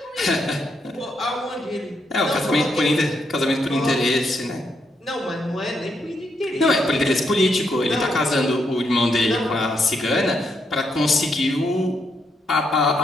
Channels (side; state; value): both; normal; correlation 0.78